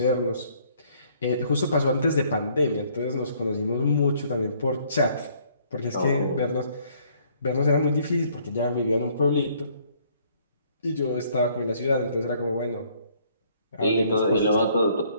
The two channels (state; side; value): inverted; both; correlation -0.63